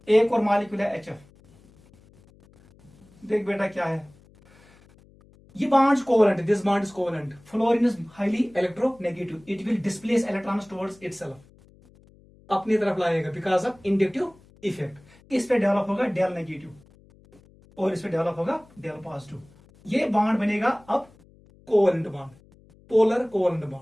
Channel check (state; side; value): noise; left; hum, 27 dB below the sound